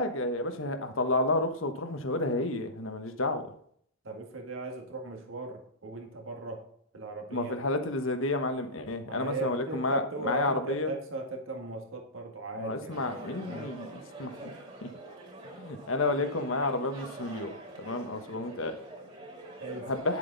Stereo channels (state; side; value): normal; both; correlation -0.18